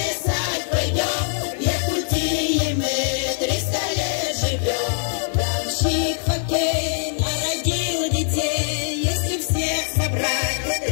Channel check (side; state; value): right; silent; 64 dB below the other